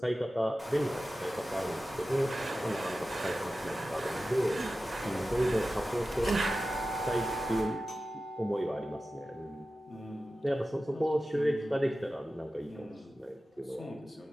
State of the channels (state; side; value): normal; both; correlation 0.94